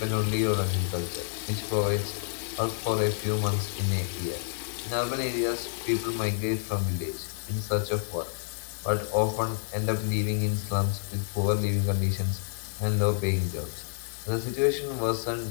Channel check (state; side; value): silent; right; digital silence